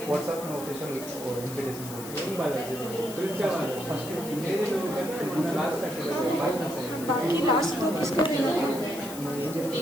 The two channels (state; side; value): noise; left; hiss, 12 dB below the sound